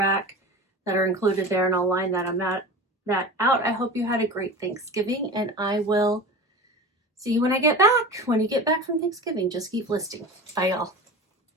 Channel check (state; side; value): normal; both; correlation 0.32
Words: that are included there, and I'll line that out. I hope you had a great Thanksgiving, and I will see you when I get back. When you get back from Thanksgiving, just keep listing. Bye, y'all.